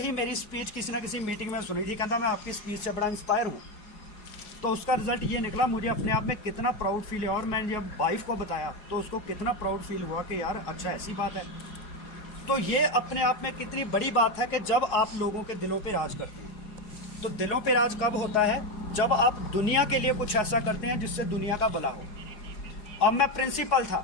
मेरी स्पीच किसी ना किसी मीटिंग में सुनी थी, कहता मैं आपकी स्पीच से बड़ा इंस्पायर हूँ। तो उसका रिजल्ट ये निकला, मुझे अपने आप में कितना प्राउड फील है। और मैंने जब वाइफ को बताया तो उसको कितना प्राउड फील हुआ कि यार अच्छा ऐसी बात है। तो ये अपने आप में कितनी बड़ी बात है कि जब आप लोगों के दिलों पे राज करते हैं। तो दिलों पे राज कब होता है? जब आप दुनिया के लिए कुछ ऐसा करते हैं जिससे दुनिया का भला हो। अब मैं प्रिंसिपल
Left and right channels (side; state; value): right; late; 4.7 ms